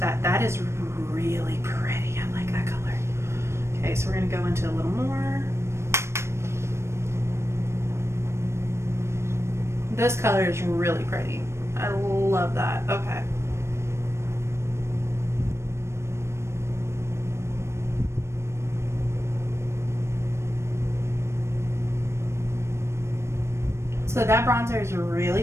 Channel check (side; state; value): left; late; 0.13 ms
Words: That is really pretty. I like that color. Okay, so we're gonna go into a little more. This color is really pretty. I love that. Okay. So that bronzer is really